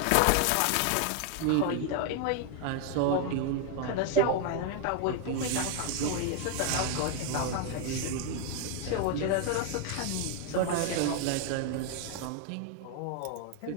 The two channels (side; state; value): both; different; correlation 0.00